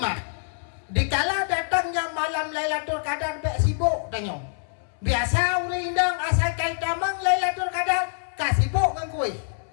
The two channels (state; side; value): silent; right; 62 dB below the other